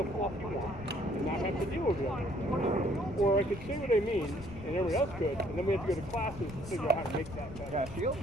fluff you want and not have to deal with it. Or I could say what I mean, and everybody else could, and then we have to go to classes to figure out how to make that better. Yeah, shield?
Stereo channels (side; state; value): left; noise; rumble, 13 dB below the sound